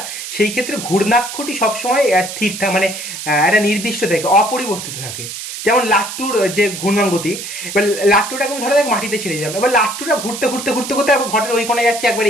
সেই ক্ষেত্রে ঘূর্ণাক্ষটি সবসময় স্থির থাকে, মানে একটা নির্দিষ্ট থাকে, অপরিবর্তিত থাকে। যেমন লাট্টুর যে ঘূর্ণন গতি, এবার লাট্টুটাকে ধরা যাক মাটিতে ছেড়ে যাবে, এবার লাট্টুটা ঘুরতে ঘুরতে ঘুরতে ঘুরতে একবার ঘটের ওই কোণে যাচ্ছে, একবার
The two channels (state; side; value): noise; right; hiss, 8 dB below the sound